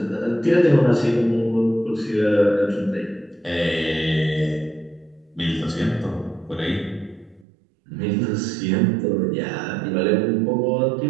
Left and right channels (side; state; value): left; drops out; at 7.5 s